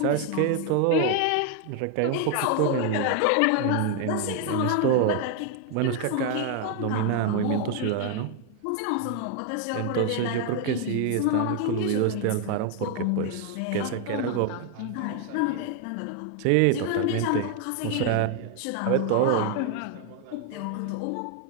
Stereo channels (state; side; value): different; both; correlation 0.01